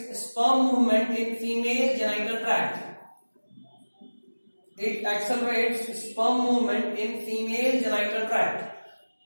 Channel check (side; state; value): both; inverted; correlation -1.00